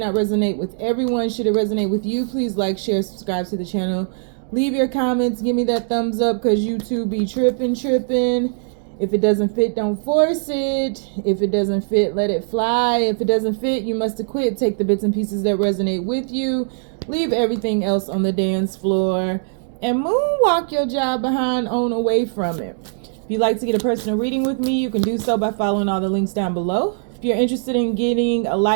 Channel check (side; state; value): left; silent; digital silence